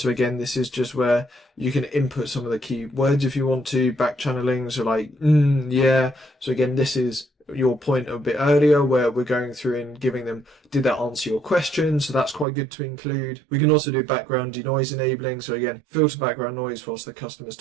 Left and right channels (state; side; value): drops out; left; at 12.5 s